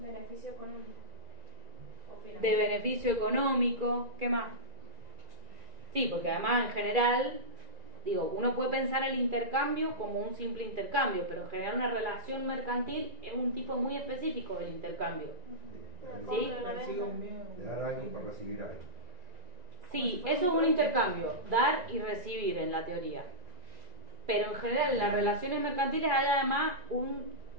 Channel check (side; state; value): left; late; 1.9 ms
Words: económico. De beneficio económico. ¿Qué más? Sí, porque además en general, digo, uno puede pensar el intercambio como un simple intercambio, pero en general una relación mercantil es un tipo muy específico del intercambio. ¿Sí? De dar a alguien por recibir algo. Sí, eso es un intercambio, dar y recibir en la teoría. Pero en general en las relaciones mercantiles hay además